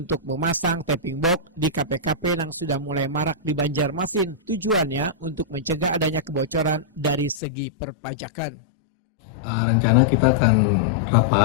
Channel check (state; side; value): drops out; right; at 7.4 s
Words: memasang tapping box di KP-KP yang sudah mulai marak di Banjarmasin. Tujuannya untuk mencegah adanya kebocoran dari segi perpajakan. Rencana kita akan